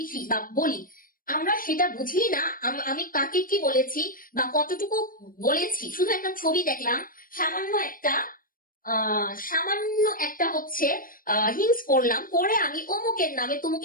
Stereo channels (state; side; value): late; right; 0.41 ms